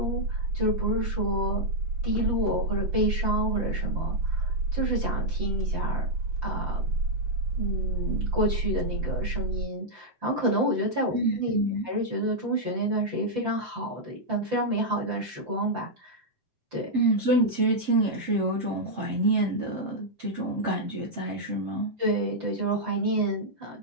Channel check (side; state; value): left; late; 7.8 ms